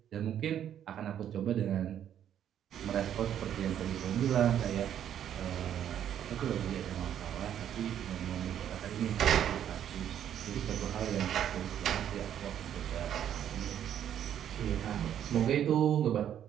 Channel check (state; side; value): quieter; left; 10.0 dB